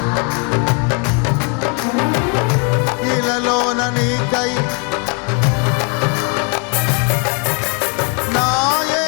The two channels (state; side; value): quieter; right; 36.5 dB